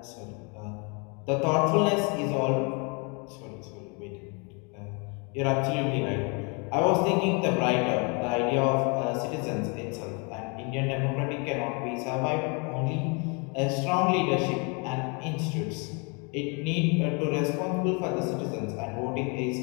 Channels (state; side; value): quieter; right; 33.1 dB